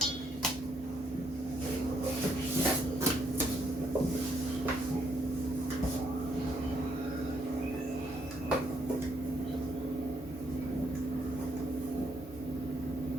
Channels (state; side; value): normal; both; correlation 0.74